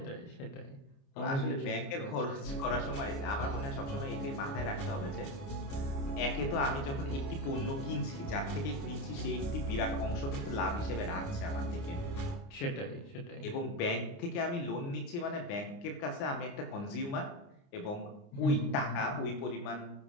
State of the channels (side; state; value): right; late; 29 ms